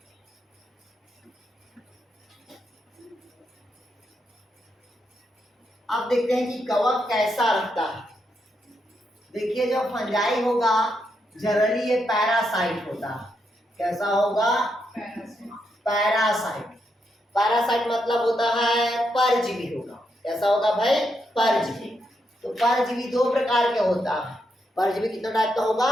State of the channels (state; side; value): normal; both; correlation 0.81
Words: अब देखते हैं कि कवक कैसा रहता है। देखिए जब फंजाई होगा जनरली ये पैरासाइट होता है। कैसा होगा पैरासाइट। पैरासाइट मतलब होता है परजीवी होगा। कैसा होगा भाई परजीवी। तो परजीवी दो प्रकार के होता है। परजीवी कितने टाइप का